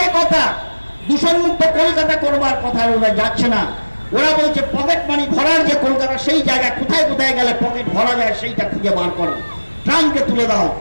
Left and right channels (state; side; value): inverted; both; correlation -1.00